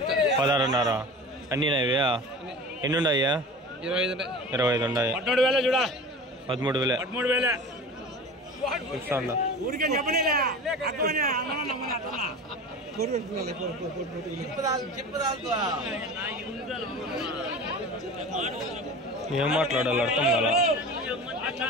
16,500. అన్నీ నావే? ఎన్ని ఉన్నాయా? 25 ఉన్నాయి. 13,000 ఇస్తాను. ఏం మాట్లాడాలి అర్థం కదా.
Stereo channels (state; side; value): normal; both; correlation 0.35